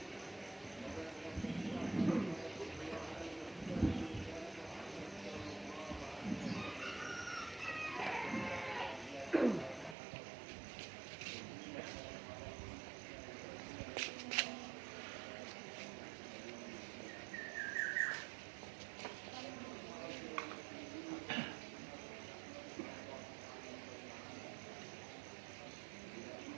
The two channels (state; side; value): drops out; left; at 10.0 s